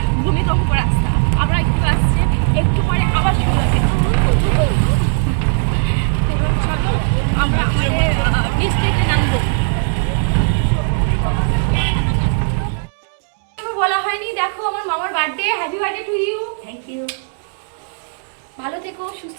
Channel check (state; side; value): silent; left; digital silence